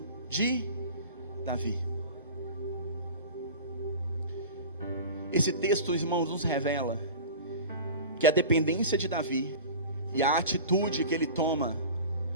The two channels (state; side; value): inverted; both; correlation -0.35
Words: de Davi. Esse texto, irmãos, nos revela que a dependência de Davi e a atitude que ele toma